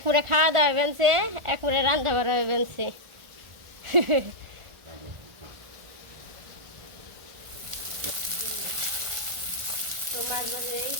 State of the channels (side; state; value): left; late; 1.4 ms